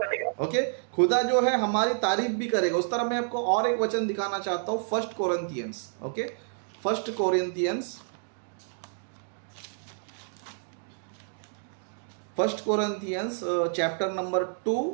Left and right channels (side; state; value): left; silent; digital silence